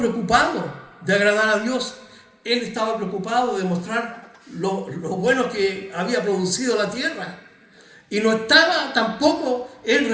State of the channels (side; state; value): both; identical; correlation 1.00